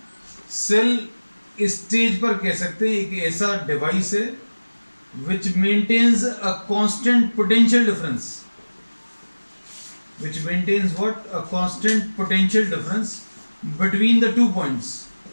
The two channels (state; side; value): inverted; both; correlation -1.00